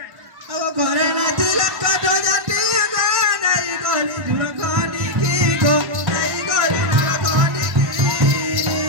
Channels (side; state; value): left; late; 1.1 ms